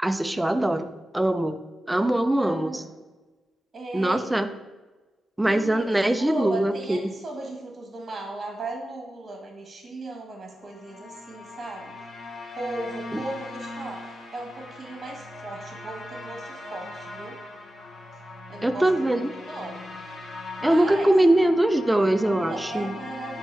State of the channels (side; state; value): both; normal; correlation 0.95